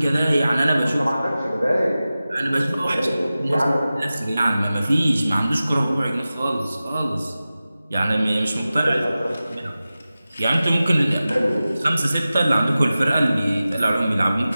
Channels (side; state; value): both; inverted; correlation -0.95